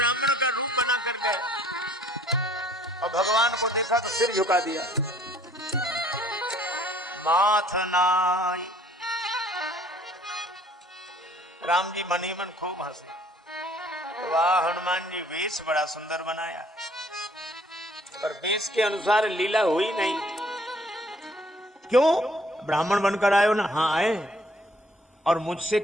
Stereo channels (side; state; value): both; normal; correlation 0.59